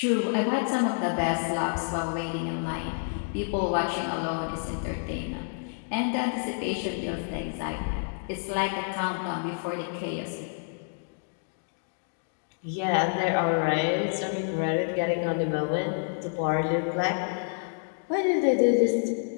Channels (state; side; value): silent; right; digital silence